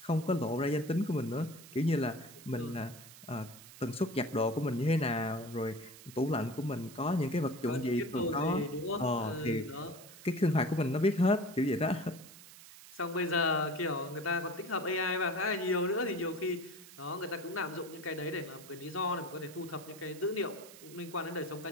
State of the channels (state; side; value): noise; right; hiss, 18 dB below the sound